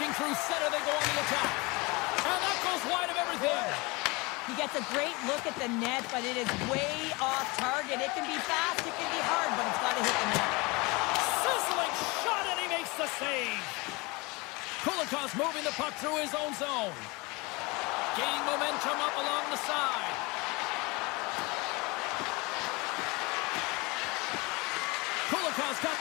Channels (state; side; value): quieter; right; 25.6 dB